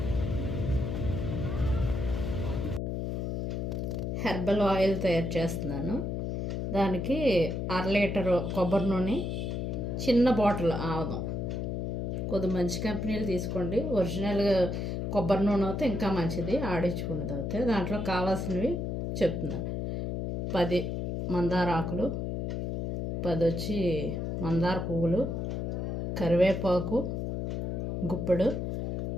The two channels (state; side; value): noise; left; hum, 2 dB below the sound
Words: హెర్బల్ ఆయిల్ తయారు చేస్తున్నాను. దానికి 1/2 లీటరు కొబ్బరి నూనె, చిన్న బాటిల్ ఆవదం. కొద్ది మంచి కంపెనీలు తీసుకోండి. ఒరిజినల్గా కొబ్బరి నూనె అయితే ఇంకా మంచిది, ఆడించుకున్నది అయితే. దాంట్లో కావాల్సినవి చెప్తున్నా. 10 మందార ఆకులు, 10 వచ్చి మందార పువ్వులు, కరివేపాకు గుప్పెడు,